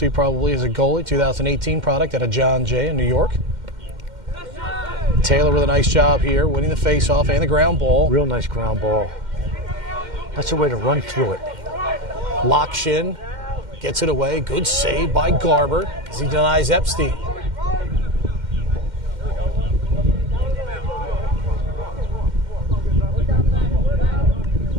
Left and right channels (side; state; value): left; late; 2.1 ms